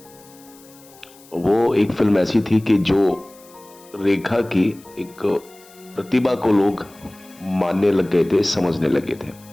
वो एक फिल्म ऐसी थी कि जो रेखा की एक प्रतिभा को लोग मानने लग गए थे, समझने लगे थे।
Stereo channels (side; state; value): left; noise; hiss, 25 dB below the sound